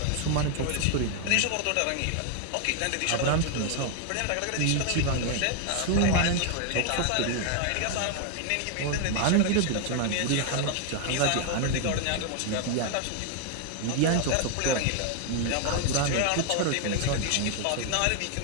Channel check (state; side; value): different; both; correlation 0.00